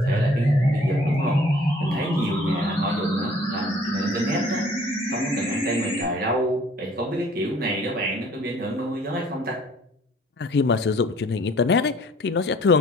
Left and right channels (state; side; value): normal; both; correlation 0.55